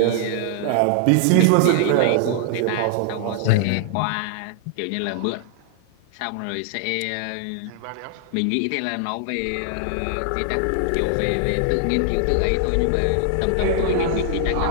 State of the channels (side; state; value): both; different; correlation 0.00